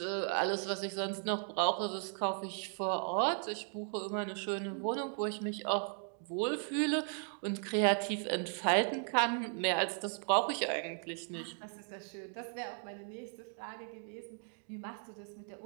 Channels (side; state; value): left; silent; 53 dB below the other